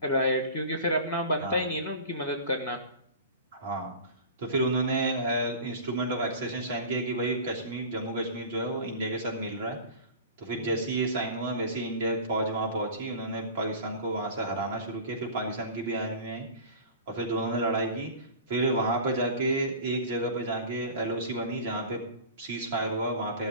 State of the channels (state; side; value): inverted; both; correlation -0.37